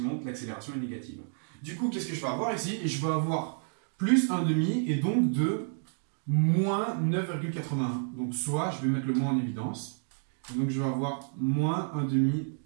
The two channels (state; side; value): silent; left; digital silence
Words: monte, l'accélération est négative. Du coup, qu'est-ce que je vais avoir ici? Et je vais avoir plus 1,5 et donc de moins 9,81. Donc soit, je vais mettre le moins en évidence, Donc je vais avoir moins 1 demi